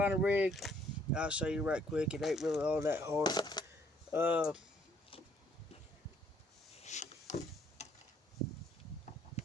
rig. I'll show you right quick. It ain't really all that hard.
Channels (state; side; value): normal; both; correlation 0.65